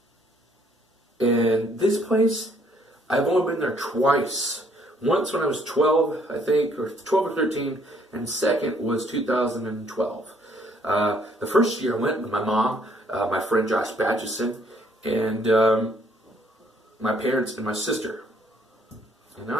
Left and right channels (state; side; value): normal; both; correlation 0.65